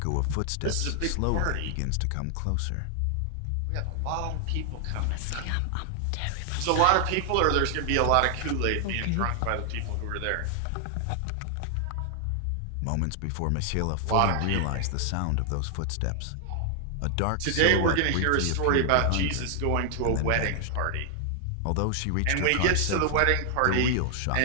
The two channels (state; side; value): different; both; correlation 0.00